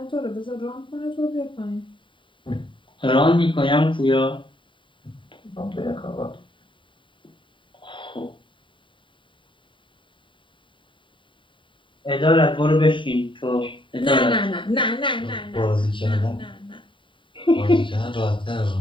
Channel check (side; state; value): right; late; 0.24 ms